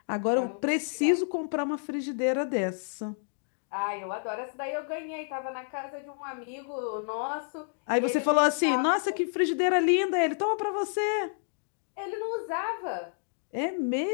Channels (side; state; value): right; silent; digital silence